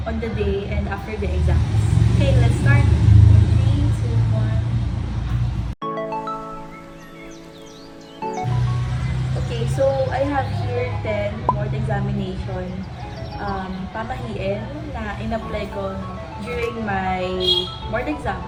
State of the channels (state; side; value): identical; both; correlation 1.00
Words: on the day, and after the exams? Okay, let's start! 3, 2, 1. Okay, so I have here 10 board examination pamahiin na in-apply ko during my board exam.